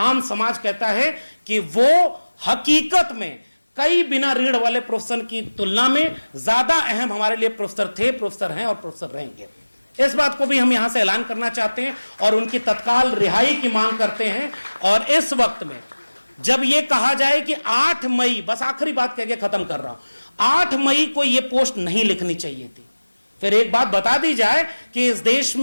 समाज कहता है कि वो हकीकत में कई बिना रीढ़ वाले प्रोफेसर की तुलना में ज्यादा अहम हमारे लिए प्रोफेसर थे, प्रोफेसर हैं और प्रोफेसर रहेंगे। इस बात को भी हम यहां से ऐलान करना चाहते हैं और उनकी तत्काल रिहाई की मांग करते हैं। और इस वक्त में जब यह कहा जाए कि 8 मई, बस आखिरी बात कह के खत्म कर रहा हूं, 8 मई को यह पोस्ट नहीं लिखनी चाहिए थी। फिर एक बात बता दी जाए कि इस देश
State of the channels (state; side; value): inverted; both; correlation -1.00